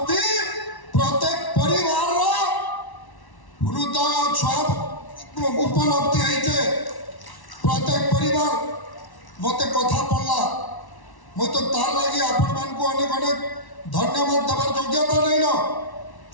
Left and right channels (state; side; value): late; right; 1.1 ms